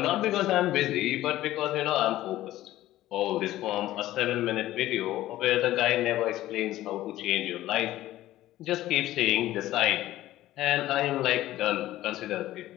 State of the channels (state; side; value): quieter; right; 15.0 dB